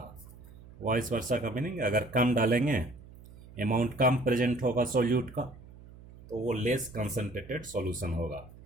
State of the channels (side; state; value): right; noise; hum, 19 dB below the sound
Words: का मीनिंग, अगर कम डालेंगे, अमाउंट कम प्रेजेंट होगा सॉल्यूट का, तो वो लेस कंसंट्रेटेड सॉल्यूशन होगा।